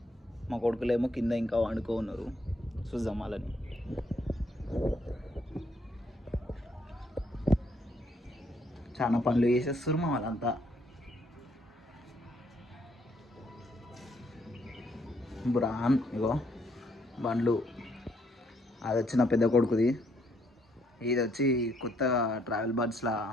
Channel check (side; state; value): both; normal; correlation 0.71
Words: మా కొడుకులేమో కింద ఇంకా వండుకో ఉన్నారు, చూద్దాం వాళ్ళని. చాలా పనులు చేసేస్తారు మా వాళ్ళంతా. బ్రాన్ ఇగో బండ్లు, అది వచ్చి నా పెద్ద కొడుకుది, ఇది వచ్చి కొత్త ట్రావెల్ బర్డ్స్లా